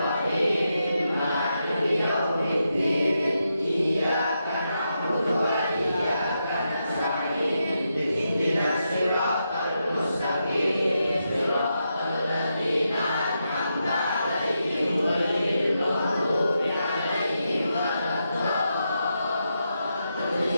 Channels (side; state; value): both; inverted; correlation -0.85